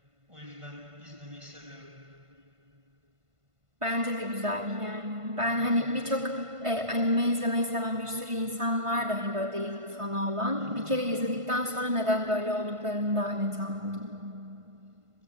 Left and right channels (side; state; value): left; late; 1.5 ms